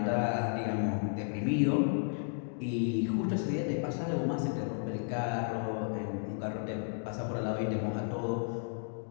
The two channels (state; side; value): silent; right; digital silence